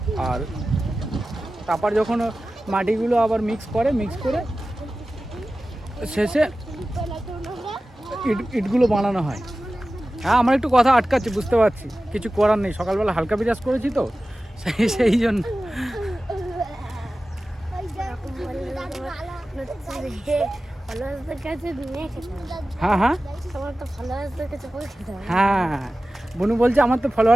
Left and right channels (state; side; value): normal; both; correlation 0.95